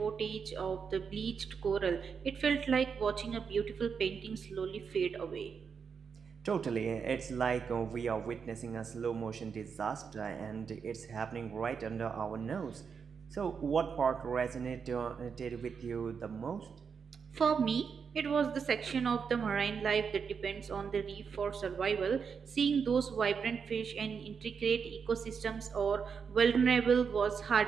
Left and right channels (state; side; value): quieter; left; 6.2 dB